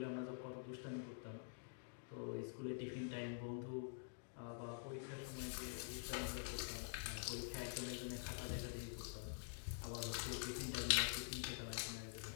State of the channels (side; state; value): right; silent; digital silence